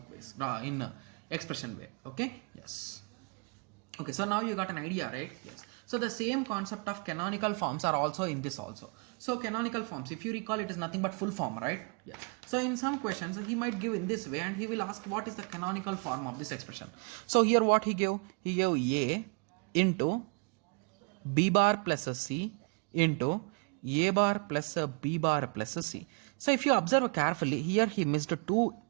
ways, in expression way. Okay? Yes. Okay, so now you got an idea, right? Yes. So the same concept of canonical forms are also in this also. So canonical forms, if you recall, it is nothing but full form, right? Yes. So in some questions, he might give in this way and he will ask what is the canonical form of this expression. So here what he gave? He gave A into B bar plus C into A bar plus B bar plus C. So if you observe carefully, here he missed two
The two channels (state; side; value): quieter; left; 34.4 dB